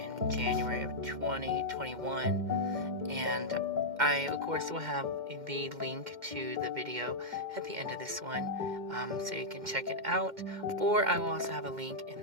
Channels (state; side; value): late; left; 2.1 ms